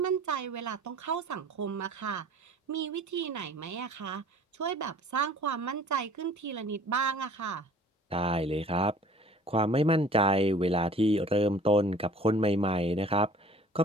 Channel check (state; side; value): normal; both; correlation 0.49